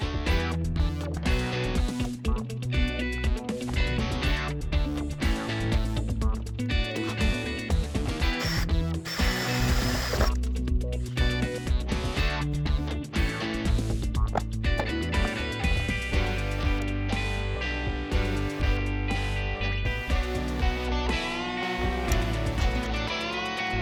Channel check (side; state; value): both; identical; correlation 1.00